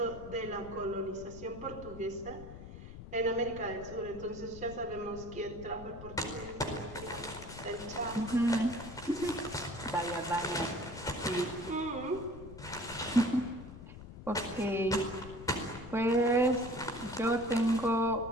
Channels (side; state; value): left; noise; rumble, 13 dB below the sound